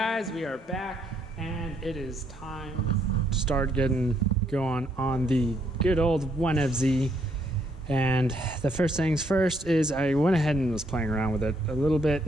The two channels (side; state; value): both; normal; correlation 0.72